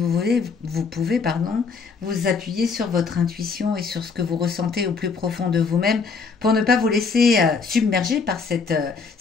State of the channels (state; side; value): quieter; right; 5.0 dB